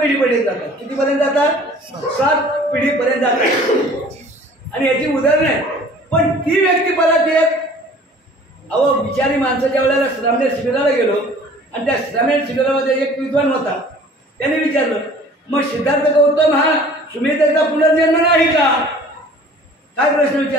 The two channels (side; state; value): both; normal; correlation 0.49